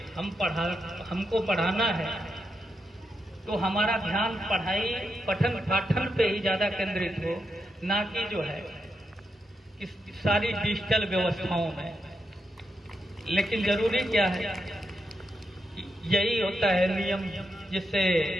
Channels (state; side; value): normal; both; correlation 0.84